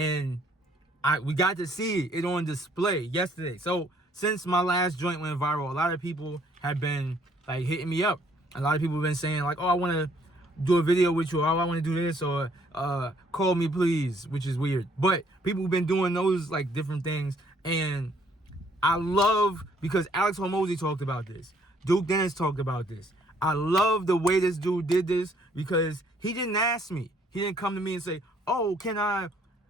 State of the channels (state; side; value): normal; both; correlation 0.64